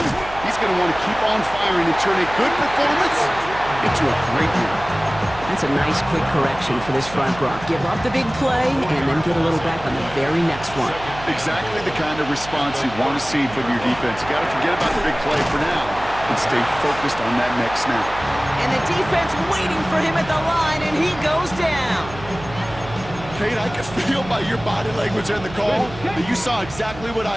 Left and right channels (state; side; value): noise; right; hum, 14 dB below the sound